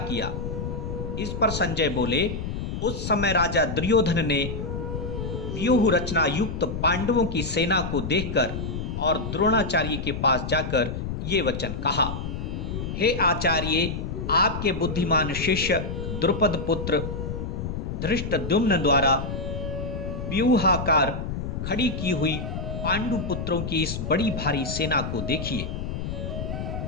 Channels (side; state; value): left; noise; rumble, 5 dB below the sound